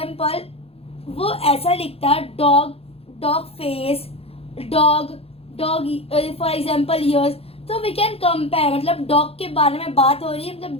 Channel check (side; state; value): right; late; 0.28 ms